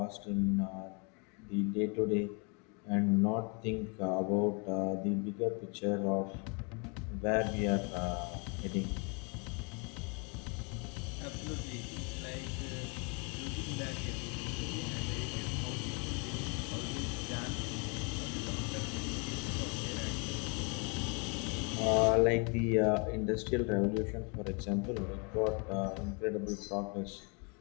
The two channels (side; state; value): right; quieter; 34.1 dB